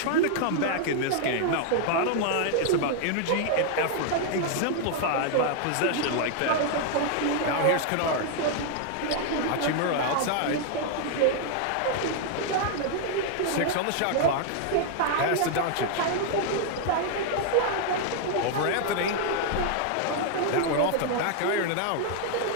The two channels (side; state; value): both; different; correlation 0.00